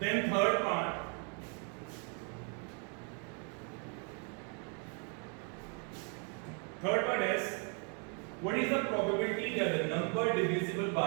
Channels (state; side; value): quieter; left; 39.1 dB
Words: Then third part. Third part is, what is the probability that the number divisible